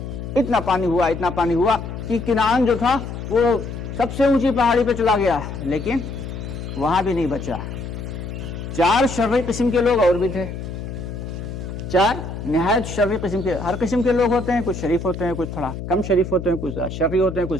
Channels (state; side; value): noise; left; hum, 8 dB below the sound